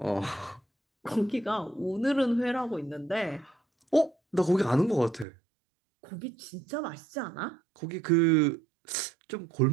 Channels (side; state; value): left; drops out; at 5.2 s